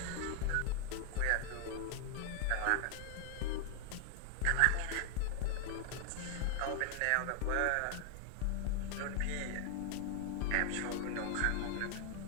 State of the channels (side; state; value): both; different; correlation 0.00